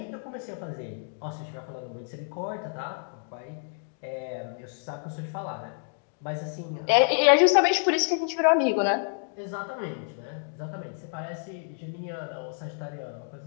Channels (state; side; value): silent; right; 59 dB below the other